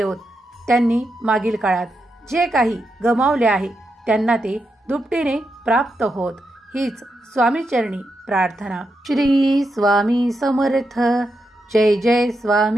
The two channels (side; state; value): both; normal; correlation 0.85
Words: त्यांनी मागील काळात जे काही गमावले आहे त्यांना ते दुपटीने प्राप्त होत. हीच स्वामीचरणी प्रार्थना. श्री स्वामी समर्थ. जय जय